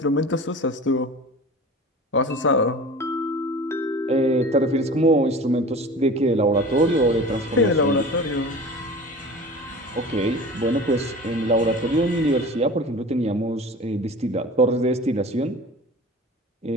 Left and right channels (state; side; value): normal; both; correlation 0.38